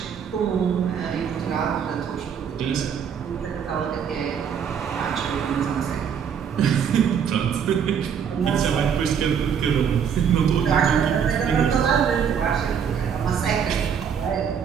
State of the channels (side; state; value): left; quieter; 7.6 dB